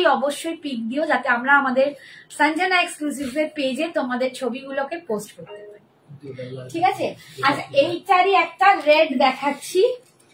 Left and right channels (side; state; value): both; identical; correlation 1.00